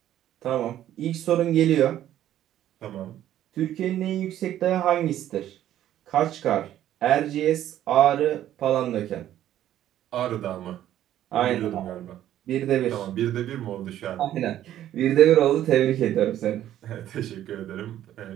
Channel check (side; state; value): left; quieter; 12.1 dB